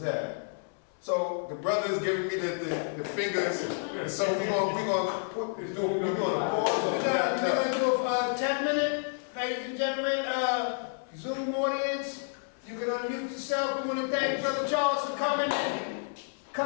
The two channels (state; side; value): silent; right; digital silence